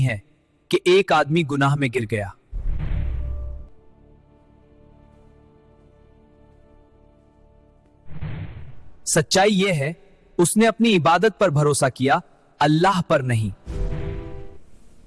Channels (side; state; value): both; identical; correlation 1.00